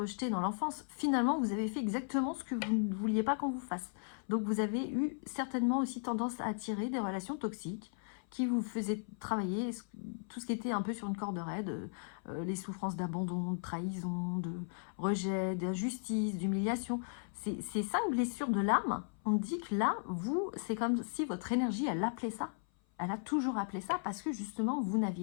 dans l'enfance. Finalement, vous avez fait exactement ce que vous ne vouliez pas qu'on vous fasse. Donc, vous avez eu certainement aussi tendance à attirer des relations toxiques qui vous faisaient travailler tout ce qui était un peu sur une corde raide, les souffrances d'abandon, de trahison, de rejet, d'injustice, d'humiliation. Ces 5 blessures de l'âme, on dit que là, vous, c'est comme si votre énergie, elle appelait ça. Elle a toujours appelé ça parce que justement, vous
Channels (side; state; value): right; silent; 54 dB below the other